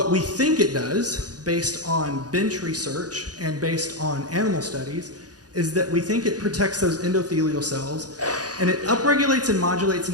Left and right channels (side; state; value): left; late; 0.68 ms